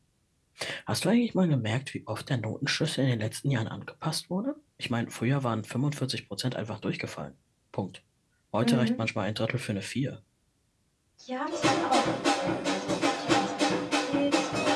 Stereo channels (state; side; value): identical; both; correlation 1.00